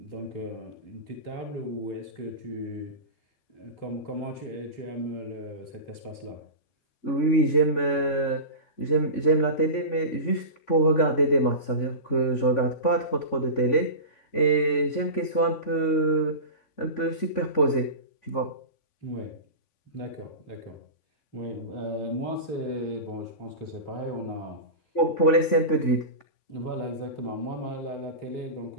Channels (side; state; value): right; late; 3.5 ms